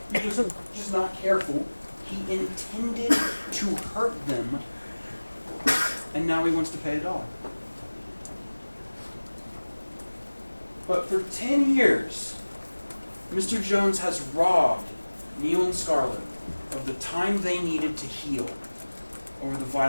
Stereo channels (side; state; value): both; inverted; correlation -1.00